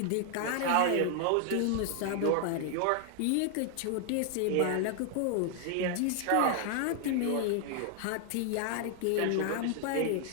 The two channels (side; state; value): both; different; correlation 0.00